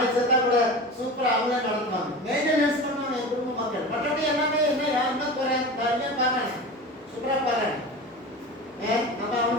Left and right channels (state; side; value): normal; both; correlation 0.31